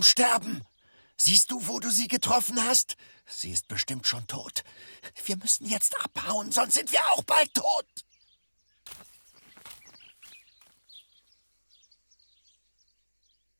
Sterben. Siehst du, wo du sie getroffen hast? Sie ist bestimmt schon tot. Wir müssen jetzt abhauen, sonst sind wir auch bald tot.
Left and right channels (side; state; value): both; inverted; correlation -1.00